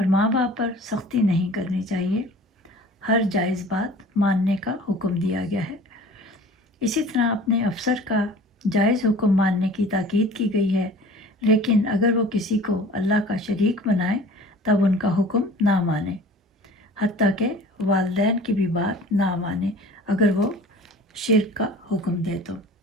ماں باپ پر سختی نہیں کرنی چاہیے۔ ہر جائز بات ماننے کا حکم دیا گیا ہے۔ اسی طرح اپنے افسر کا جائز حکم ماننے کی تاکید کی گئی ہے، لیکن اگر وہ کسی کو اللہ کا شریک بنائے تب ان کا حکم نہ مانے، حتیٰ کہ والدین کی بھی بات نہ مانے اگر وہ شرک کا حکم دے تو۔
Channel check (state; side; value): normal; both; correlation 0.44